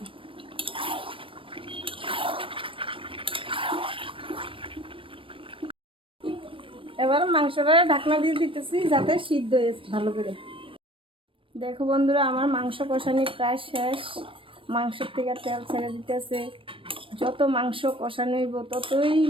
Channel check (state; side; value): late; left; 0.25 ms